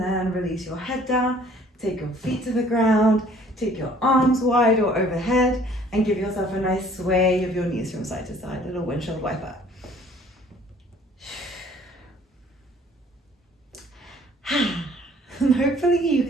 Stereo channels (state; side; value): normal; both; correlation 0.56